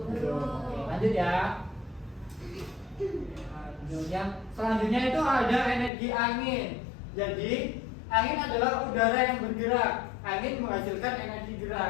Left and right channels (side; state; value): right; drops out; at 5.9 s